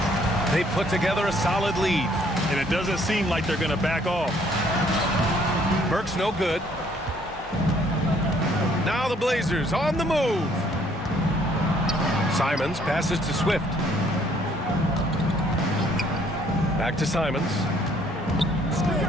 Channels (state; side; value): normal; both; correlation 0.63